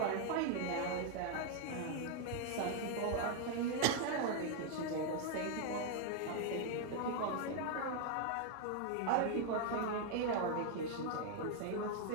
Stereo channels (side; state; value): both; different; correlation 0.00